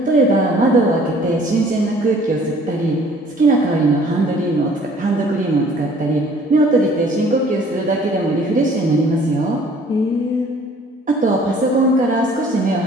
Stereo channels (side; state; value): both; normal; correlation 0.55